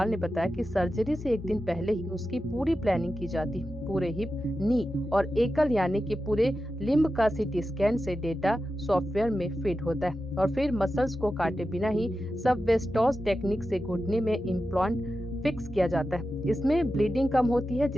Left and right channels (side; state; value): both; normal; correlation 0.91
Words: ने बताया कि सर्जरी से एक दिन पहले ही उसकी पूरी प्लानिंग की जाती है। पूरे हिप, नी और एकल यानी कि पूरे लिम्ब का सीटी स्कैन से डेटा सॉफ्टवेयर में फीड होता है और फिर मसल्स को काटे बिना ही सबवेस्टोस टेक्निक से घुटने में इम्प्लांट फिक्स किया जाता है। इसमें ब्लीडिंग कम होती है,